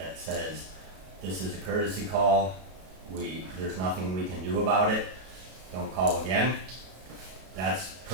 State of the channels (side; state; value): left; late; 32 ms